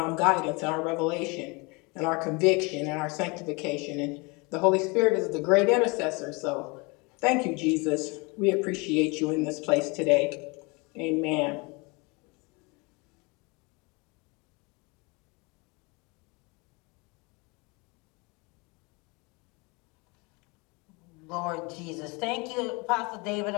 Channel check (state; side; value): quieter; right; 28.1 dB